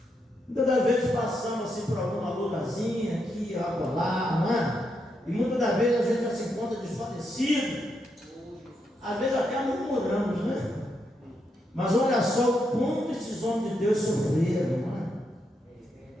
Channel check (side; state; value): both; normal; correlation 0.81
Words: Muitas das vezes passamos assim por alguma lutazinha aqui, lá, não é? E muitas das vezes a gente já se encontra desfalecido, às vezes até murmuramos, né? Mas olha só o quanto esses homens de Deus sofreram, não é?